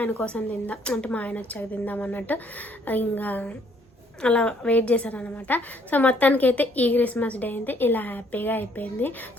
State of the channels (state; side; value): normal; both; correlation 0.65